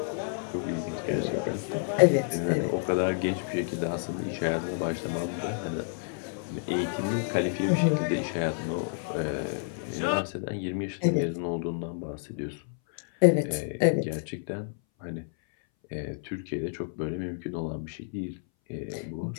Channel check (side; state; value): right; silent; 58 dB below the other